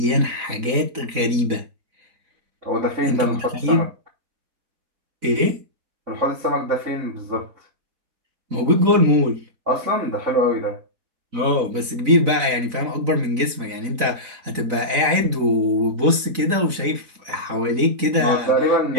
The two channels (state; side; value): late; left; 4.0 ms